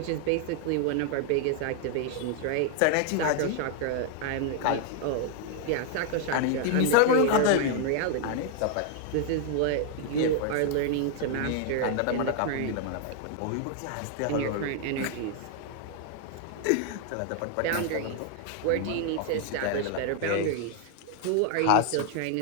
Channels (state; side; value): different; both; correlation 0.00